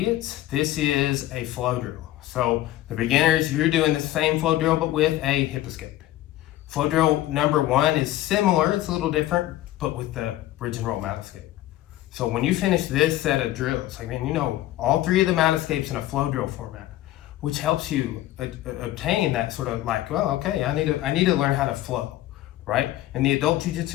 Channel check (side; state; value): right; quieter; 14.8 dB